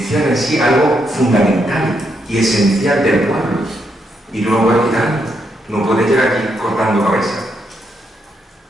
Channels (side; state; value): both; normal; correlation 0.79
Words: en sí algo fundamental y esencial del pueblo. Y no lo puedes quitar. No puedes llegar aquí cortando cabezas.